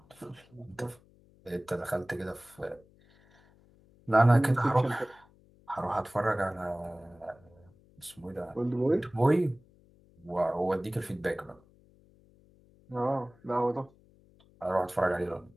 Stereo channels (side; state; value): left; noise; hum, 29 dB below the sound